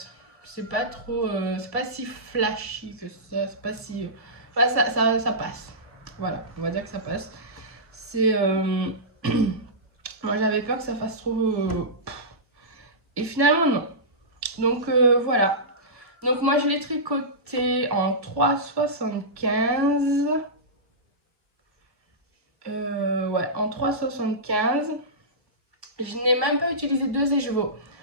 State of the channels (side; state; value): left; late; 1.2 ms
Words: C'est pas trop, c'est pas si flashy que ça, c'est pas si... Enfin, ça passe. Voilà, on va dire que ça passe. C'est... Moi, j'avais peur que ça fasse trop... Et finalement, non. Donc, voilà. Donc, moi, je l'ai tricoté en 3,75. Ouais, en 3,75. Je n'ai même pas utilisé 2 écheveaux.